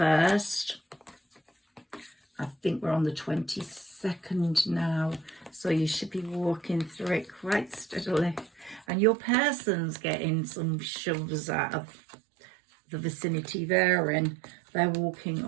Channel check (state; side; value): drops out; left; at 8.8 s